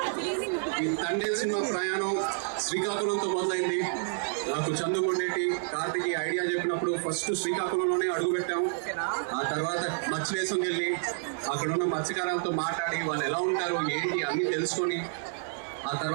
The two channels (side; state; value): left; silent; 58 dB below the other